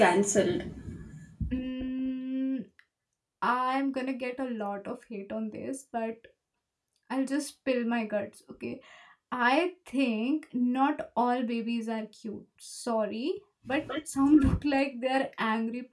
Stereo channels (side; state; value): both; identical; correlation 1.00